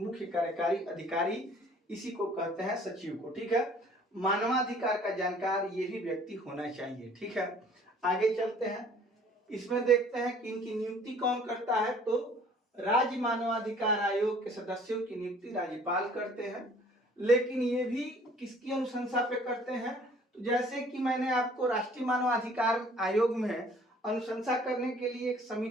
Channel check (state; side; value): normal; both; correlation 0.54